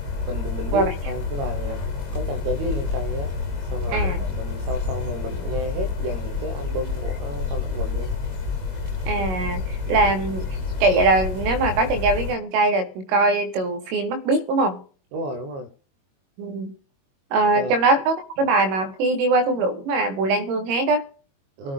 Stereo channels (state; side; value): late; left; 22 ms